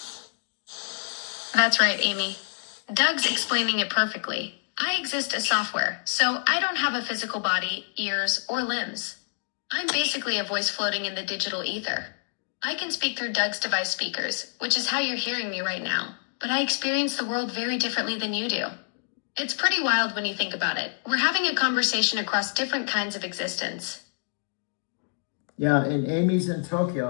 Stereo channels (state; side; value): silent; right; digital silence